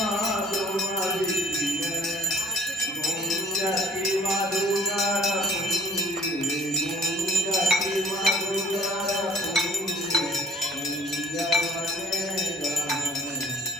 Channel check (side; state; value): both; normal; correlation 0.53